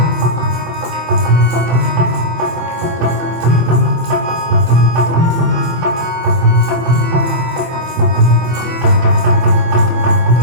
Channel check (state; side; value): late; left; 24 ms